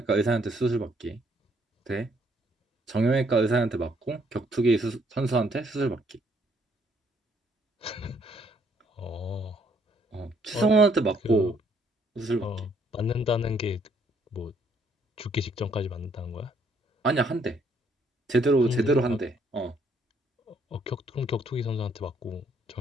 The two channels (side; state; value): both; normal; correlation 0.68